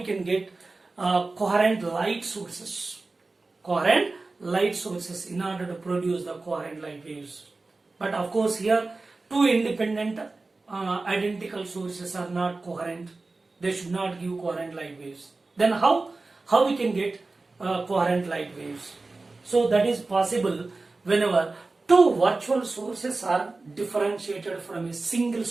get coherent light sources? Coherent light sources in order to produce the coherent light waves. But of course, here two independent identical sources are not coherent. They should not give coherent light waves. Then how we can get coherent light waves? So that is possible whenever two virtual sources are differentiated from a single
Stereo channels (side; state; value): left; quieter; 3.5 dB